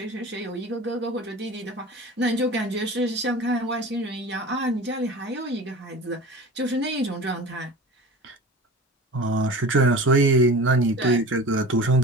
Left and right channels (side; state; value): both; normal; correlation 0.36